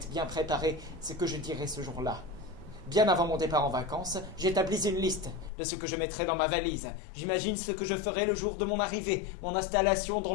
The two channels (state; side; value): drops out; right; at 5.5 s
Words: bien préparé, ce que je dirai ce jour-là. Bien avant mon départ en vacances, j'établis une liste de ce que je mettrai dans ma valise. J'imagine ce que je ferai le jour de mon arrivée, mon installation dans